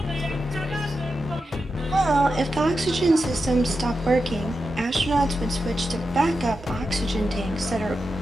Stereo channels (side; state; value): both; normal; correlation 0.89